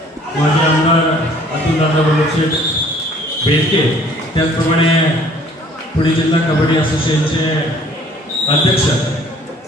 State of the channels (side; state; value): both; normal; correlation 0.56